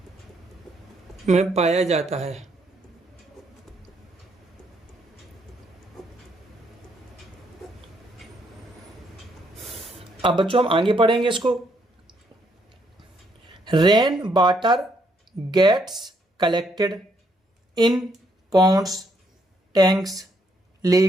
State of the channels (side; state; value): both; normal; correlation 0.73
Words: में पाया जाता है। अब बच्चों हम आगे पढ़ेंगे इसको। Rain water gets collected in ponds, tanks,